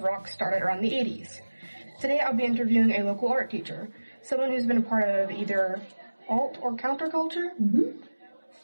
rock started around the 80s. Today, I'll be interviewing a local art teacher, someone who's been a part of either alt or counterculture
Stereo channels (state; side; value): inverted; both; correlation -1.00